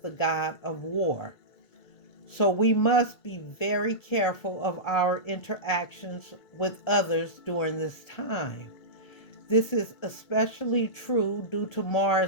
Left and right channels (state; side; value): late; right; 1.4 ms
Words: god of war. So we must be very careful of our interactions with others during this time. This is especially true due to